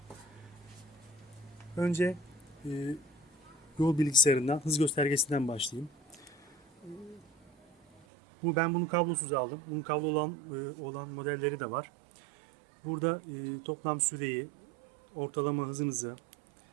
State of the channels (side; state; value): left; drops out; at 8.0 s